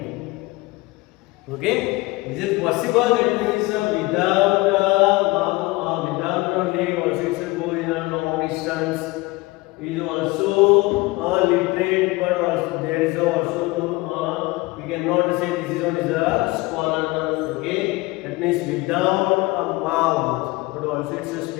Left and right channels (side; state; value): right; quieter; 21.9 dB